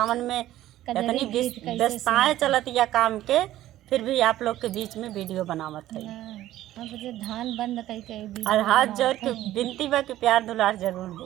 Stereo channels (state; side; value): quieter; left; 14.1 dB